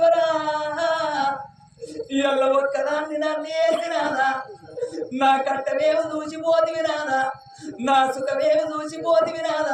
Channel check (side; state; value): both; identical; correlation 1.00